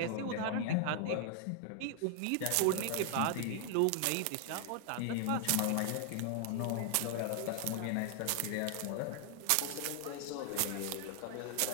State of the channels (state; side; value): different; both; correlation 0.00